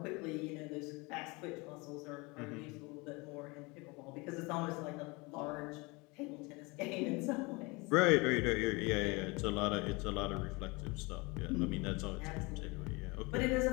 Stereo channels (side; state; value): right; quieter; 26.3 dB